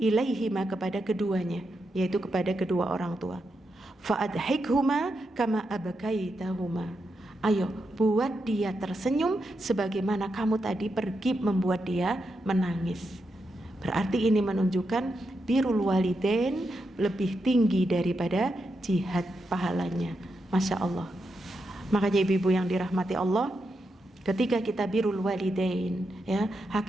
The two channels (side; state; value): both; normal; correlation 0.85